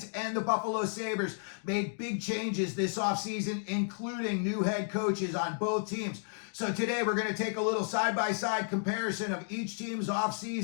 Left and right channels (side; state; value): right; silent; digital silence